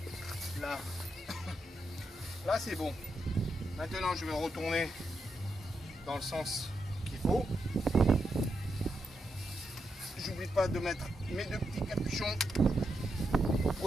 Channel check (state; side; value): normal; both; correlation 0.84